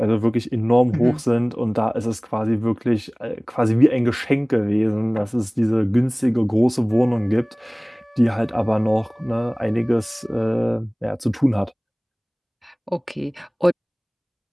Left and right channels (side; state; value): both; identical; correlation 1.00